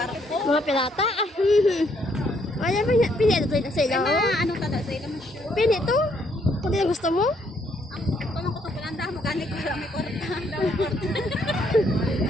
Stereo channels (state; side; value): normal; both; correlation 0.70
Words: Mga pirata. Ay, pinito to sa ilaw. Anong tada sa ilang show? Pinito? Kung di na gusto mo? Ang tunong ko to palanda mo gani ko lang may kwarta.